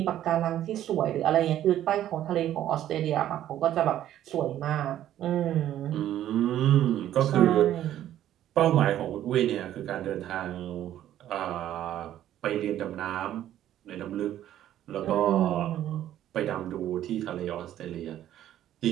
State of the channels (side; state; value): left; quieter; 12.1 dB